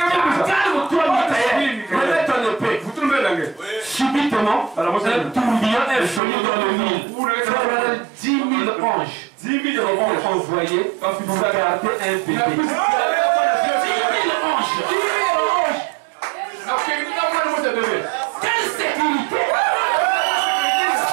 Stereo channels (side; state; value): left; drops out; at 6.2 s